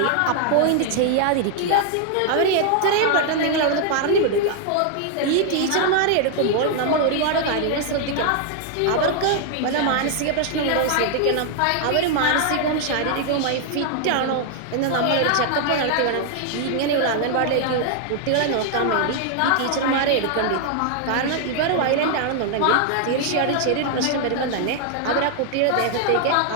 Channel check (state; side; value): different; both; correlation 0.00